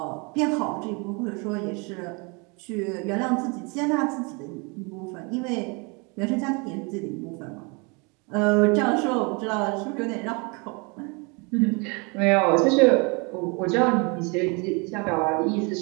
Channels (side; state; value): left; quieter; 31.0 dB